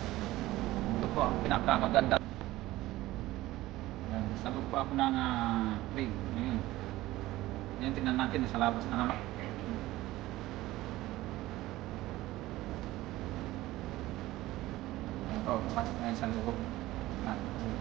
Ito po ang pinakamaganda. Yan, sabog po ako ng rig. Ngayon. Yan, tingnan natin sa labas na naman. Ito, pasok na yan sa loob.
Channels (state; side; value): quieter; left; 17.0 dB